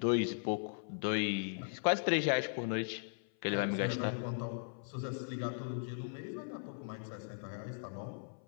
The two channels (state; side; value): silent; right; 52 dB below the other